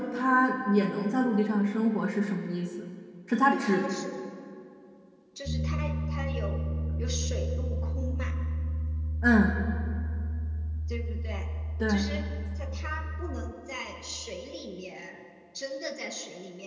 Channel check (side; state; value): both; identical; correlation 1.00